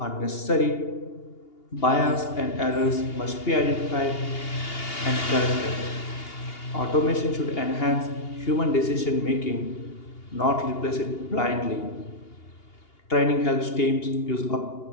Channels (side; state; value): right; late; 2.8 ms